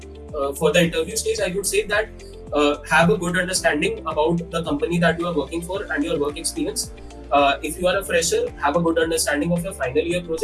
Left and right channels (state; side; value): identical; both; correlation 1.00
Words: for the interview stage, I would say that have a good understanding about the company that you are working for and your work experience. If you are a fresher, have a good understanding of your final year